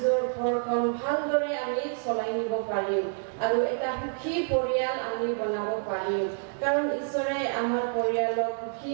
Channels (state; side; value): silent; left; digital silence